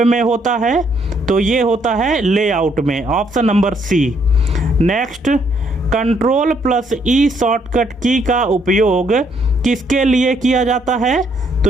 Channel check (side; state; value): both; normal; correlation 0.70